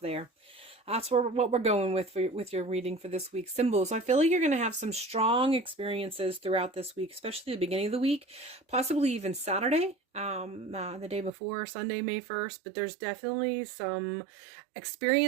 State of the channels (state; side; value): drops out; left; at 11.3 s